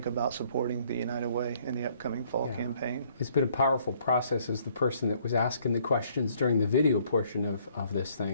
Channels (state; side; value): inverted; both; correlation -0.64